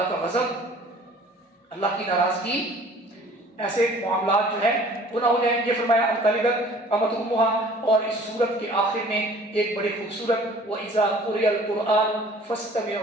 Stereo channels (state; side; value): normal; both; correlation 0.51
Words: کا غضب، اللہ کی ناراضگی، ایسے معاملات جو ہے گناہ ہو جائیں گے۔ فرمایا ان تلد الامۃ امها، اور اس سورت کے آخر میں ایک بڑی خوبصورت وَإِذَا قُرِئَ الْقُرْآنُ